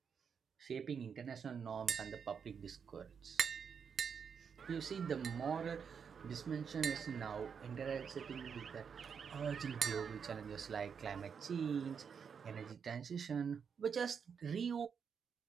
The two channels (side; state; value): left; quieter; 6.7 dB